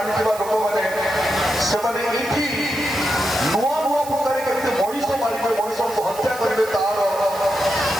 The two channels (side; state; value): right; noise; hiss, 15 dB below the sound